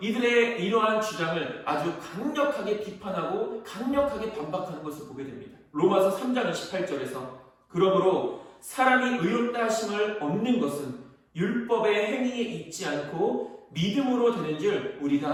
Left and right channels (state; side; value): identical; both; correlation 1.00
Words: 이들의 이러한 주장을 아주 강력하게 비판하고 강력하게 반박하는 것을 보게 됩니다. 로마서 3장 28절에서 그러므로 사람이 의롭다 하심을 얻는 것은 율법의 행위에 있지 않고 믿음으로 되는 줄